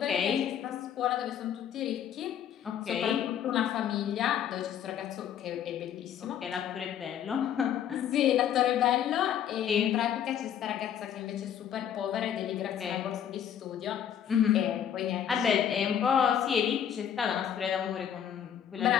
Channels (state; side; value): quieter; right; 9.4 dB